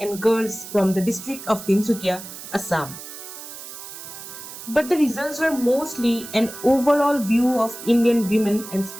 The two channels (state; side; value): noise; right; hiss, 12 dB below the sound